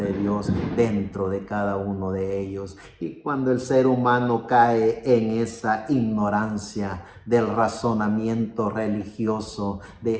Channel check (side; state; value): both; identical; correlation 1.00